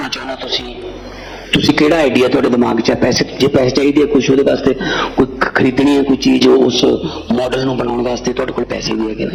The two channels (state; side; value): identical; both; correlation 1.00